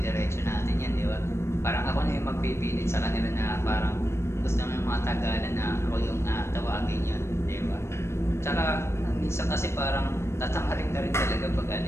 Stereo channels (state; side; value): late; right; 0.13 ms